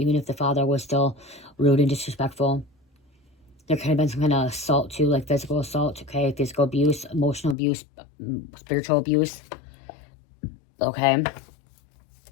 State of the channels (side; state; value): right; drops out; at 7.6 s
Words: if the father was still rude and disrespectful. There could have been some kind of assault too, like physical assault, okay? Physical abuse, emotional abuse, spiritual abuse, okay?